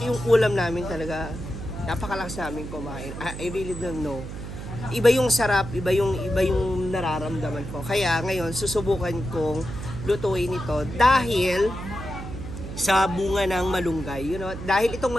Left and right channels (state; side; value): noise; right; hum, 9 dB below the sound